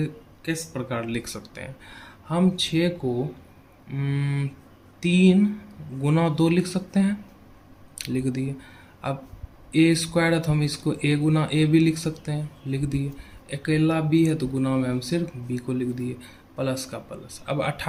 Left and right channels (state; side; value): identical; both; correlation 1.00